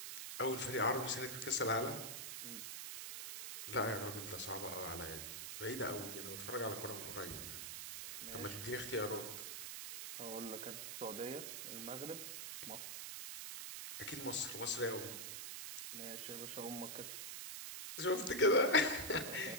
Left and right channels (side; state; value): right; noise; hiss, 6 dB below the sound